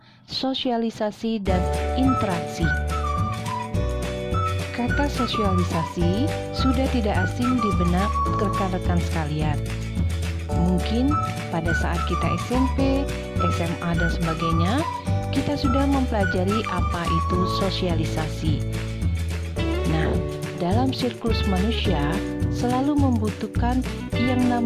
sosialisasi dan interaksi. Kata sosialisasi sudah tidak asing di benak rekan-rekan sekalian. Mungkin pada saat kita SMP, SMA dan sebagainya, kita sudah mempelajari apa itu sosialisasi. Nah, dalam siklus manusia selalu membutuhkan yang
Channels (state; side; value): identical; both; correlation 1.00